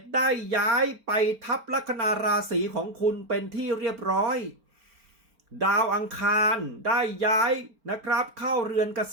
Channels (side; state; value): left; late; 4.4 ms